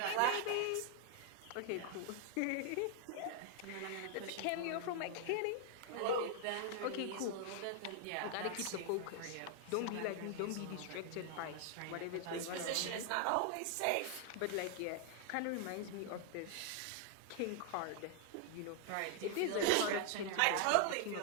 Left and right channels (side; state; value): both; different; correlation 0.00